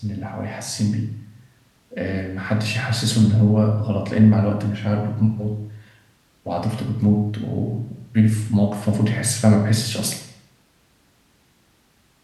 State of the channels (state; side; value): identical; both; correlation 1.00